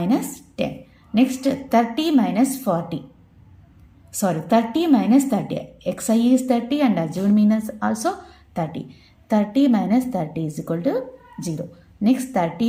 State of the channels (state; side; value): identical; both; correlation 1.00